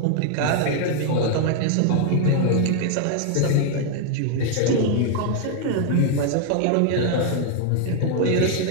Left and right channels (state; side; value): different; both; correlation 0.00